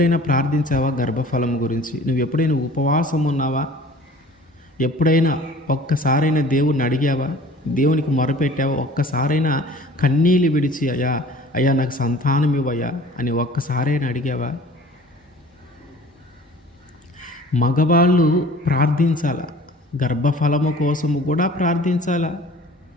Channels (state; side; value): normal; both; correlation 0.47